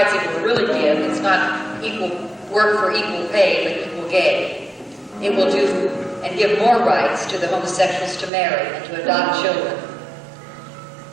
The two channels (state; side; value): drops out; left; at 8.3 s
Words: it will really give, it's not equal work for equal pay, but equal gay. It will do and give more rights to the homosexuals to marry and to adopt children.